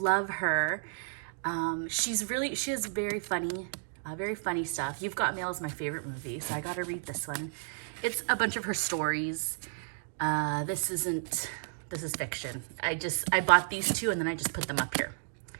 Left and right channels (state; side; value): silent; left; digital silence